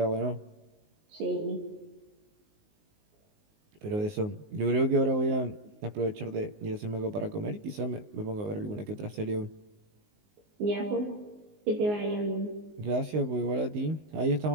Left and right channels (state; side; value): late; left; 19 ms